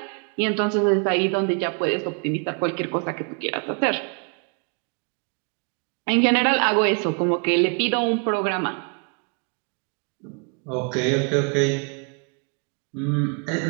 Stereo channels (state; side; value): quieter; left; 39.0 dB